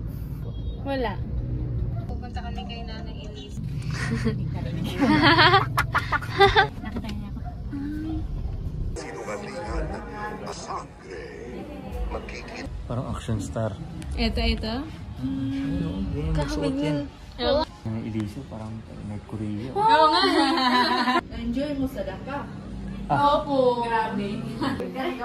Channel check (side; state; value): both; identical; correlation 1.00